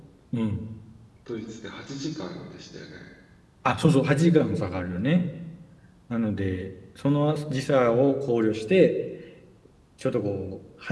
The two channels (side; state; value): both; identical; correlation 1.00